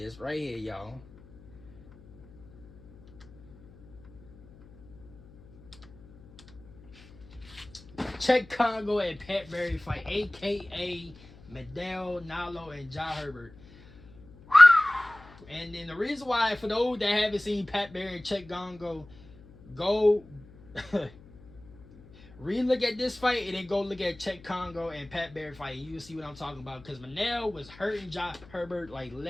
right here, y'all. Czech Congo and Pat Barry fight, a.k.a. Medel, Nalo, and Ja Herbert. And then the reason why, for those that haven't seen Pat Barry and Czech Congo, go re-look at this fight and then go look at Czech Congo and Pat Barry fight, and you'll see what I'm talking about. Because Manel was hurting Ja Herbert like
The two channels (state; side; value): noise; left; hum, 23 dB below the sound